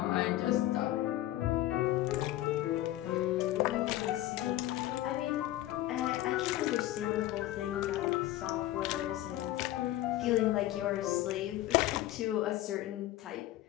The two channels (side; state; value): right; quieter; 14.9 dB